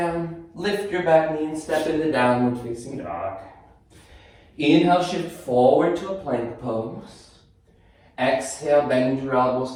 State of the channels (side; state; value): both; identical; correlation 1.00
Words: lift your back knee and step into downward facing dog. Inhale, shift forward to a plank pose. Exhale, bend your elbows,